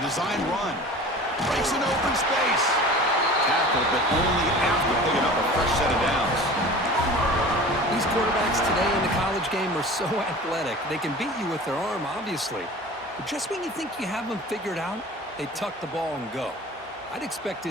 run. Breaks an open space. Tackled, but only after picking up a fresh set of downs. These quarterbacks today in the college game are so athletic. They can beat you with their arm, obviously. But just when you think you have them figured out, they tuck the ball and go. I'd expect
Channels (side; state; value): both; normal; correlation 0.40